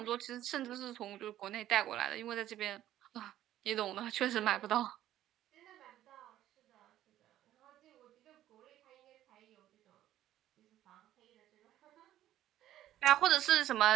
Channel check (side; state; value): left; quieter; 12.9 dB